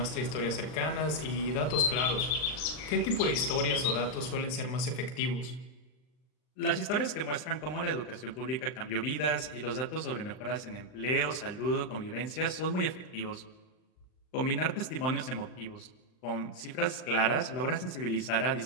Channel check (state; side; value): late; right; 39 ms